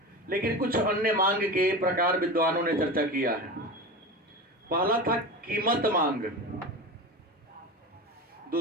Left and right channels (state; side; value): normal; both; correlation 0.27